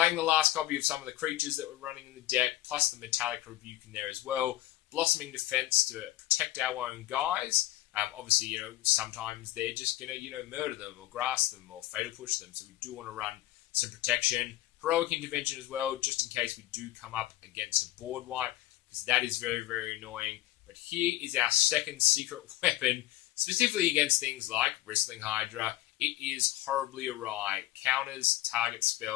the last copy of some of the creatures that we're running in the deck, plus the Metallic Rebuke in there as well. Blossoming Defense to protect our own guys. Obviously, sometimes they're just going to, murder them or grass them or fatal push them. So we do want to run some protection. Heroic Intervention as well, just in case we do come up against a board wipe, because that is very, very annoying. But here is our second secret weapon, specifically against things like Bristling Hydra. It is horribly awry. Counters target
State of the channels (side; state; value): right; quieter; 15.4 dB